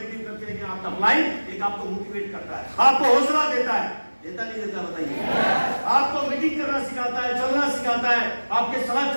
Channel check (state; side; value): inverted; both; correlation -1.00